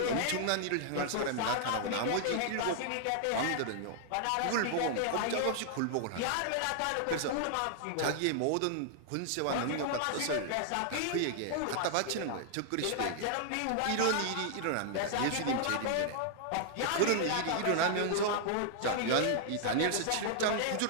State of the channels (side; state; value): both; different; correlation -0.01